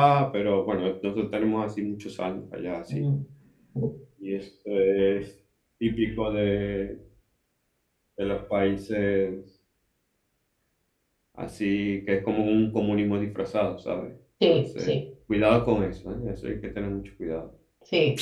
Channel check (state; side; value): identical; both; correlation 1.00